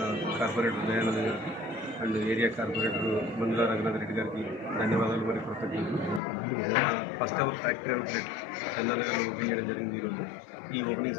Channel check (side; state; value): right; drops out; at 6.2 s